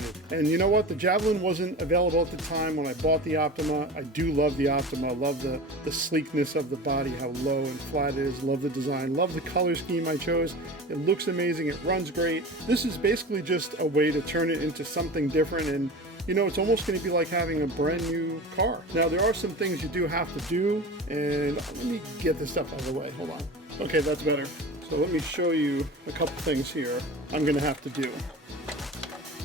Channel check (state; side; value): normal; both; correlation 0.33